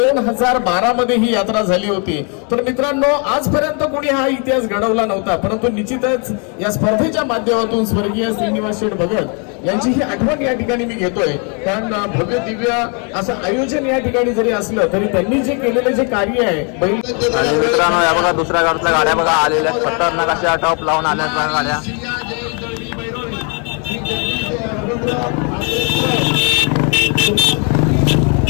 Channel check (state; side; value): quieter; right; 36.6 dB